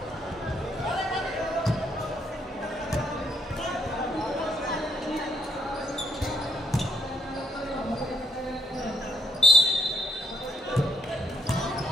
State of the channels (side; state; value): both; normal; correlation 0.71